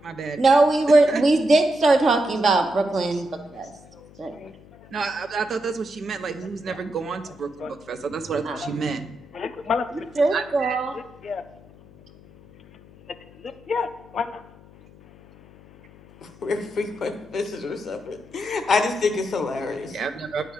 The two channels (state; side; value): noise; left; hum, 23 dB below the sound